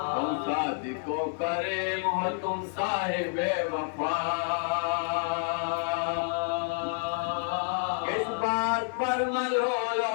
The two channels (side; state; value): right; silent; 58 dB below the other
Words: کو کریم ہو تم صاحب وفا کس بات پر ملول